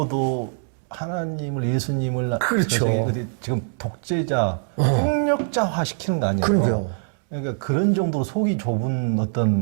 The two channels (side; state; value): left; silent; digital silence